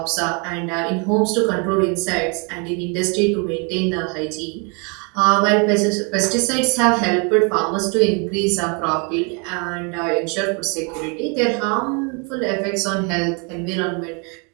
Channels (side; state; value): left; quieter; 34.2 dB